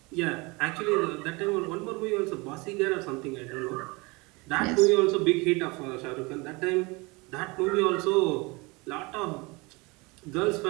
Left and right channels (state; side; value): quieter; left; 26.1 dB